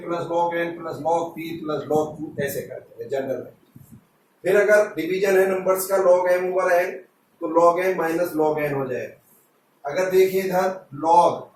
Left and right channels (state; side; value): identical; both; correlation 1.00